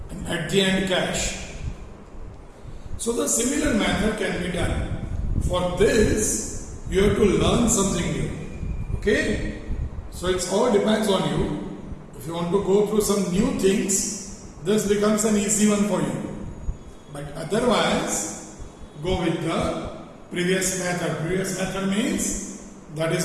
and at the end cash. So the similar method can be done. For this, you have to learn something new. Okay? So it all depends on you. If you want to go through some new things, this becomes an easy one for you. But otherwise, go with the previous method. Previous method means that is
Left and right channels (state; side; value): identical; both; correlation 1.00